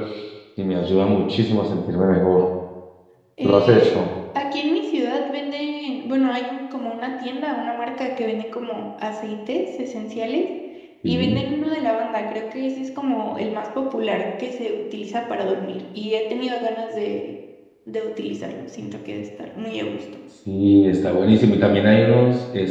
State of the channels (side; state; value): both; identical; correlation 1.00